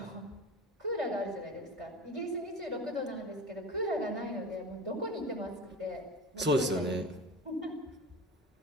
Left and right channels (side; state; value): both; normal; correlation 0.32